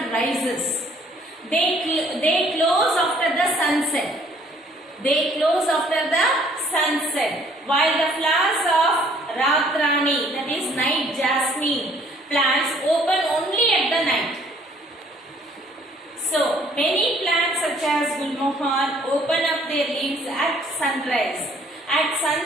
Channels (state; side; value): normal; both; correlation 0.60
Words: rises. They close after the sunset. They close after the sunset. While the flowers of Ratrani, that is night jasmine plants, open only at the night. So, many plants such as Gulmohar open up their leaves at sunrise. At